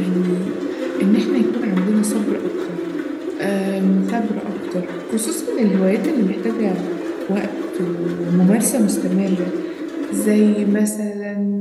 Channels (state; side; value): identical; both; correlation 1.00